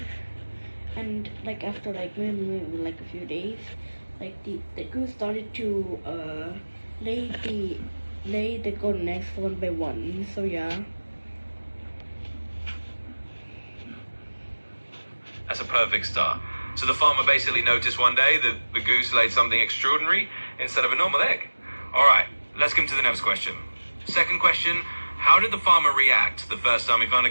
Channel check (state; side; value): inverted; both; correlation -1.00